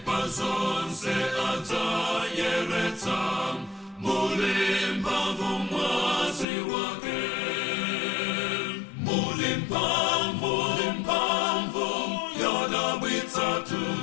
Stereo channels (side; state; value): right; drops out; at 6.5 s